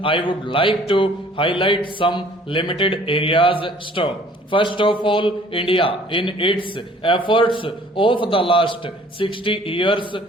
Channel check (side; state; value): both; normal; correlation 0.54